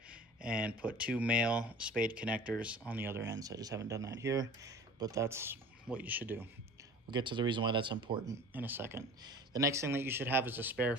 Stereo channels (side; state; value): both; normal; correlation 0.41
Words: and put 2 male spade connectors on the other ends. I just haven't done that here, but that's what you should do. We'll get to the reason why that's important in a second. The next thing that you should have is a spare